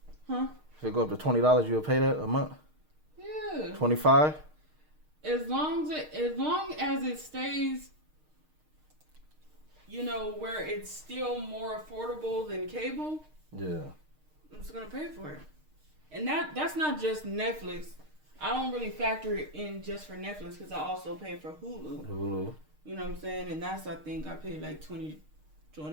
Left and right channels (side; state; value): left; late; 6.5 ms